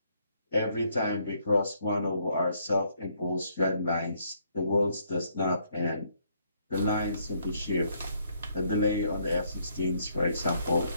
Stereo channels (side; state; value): both; inverted; correlation -0.70